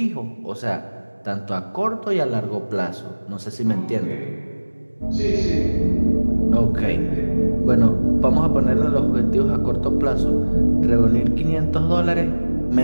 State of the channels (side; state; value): both; inverted; correlation -1.00